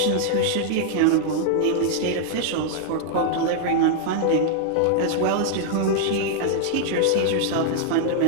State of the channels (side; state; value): both; different; correlation -0.01